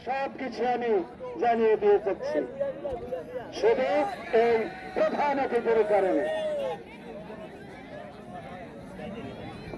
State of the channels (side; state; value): both; identical; correlation 1.00